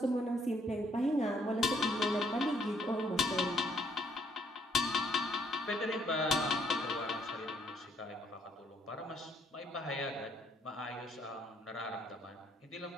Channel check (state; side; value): normal; both; correlation 0.68